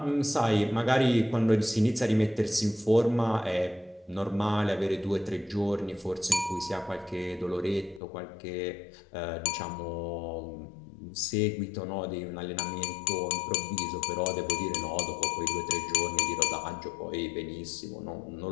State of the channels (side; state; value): right; drops out; at 8.0 s